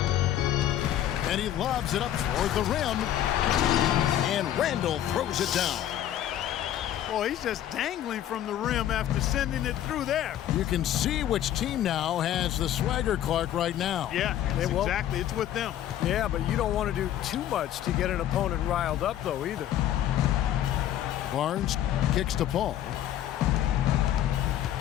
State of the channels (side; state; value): right; quieter; 11.7 dB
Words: And he lobs it up toward the rim. And Randall throws it down. Boy, he's just dangling from the rim after sending it through there. You can see which team now has the swagger, Clark, right now. Yeah, exactly. It's with them. Yeah, but you don't want to do too much to get an opponent riled up, though, either. Barnes kicks to Paul.